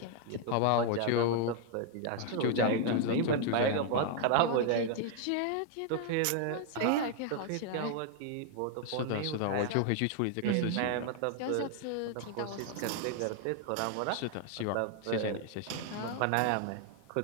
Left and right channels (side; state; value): both; different; correlation 0.00